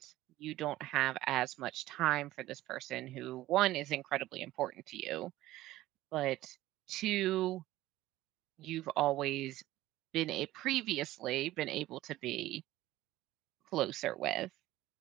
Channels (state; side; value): quieter; left; 16.0 dB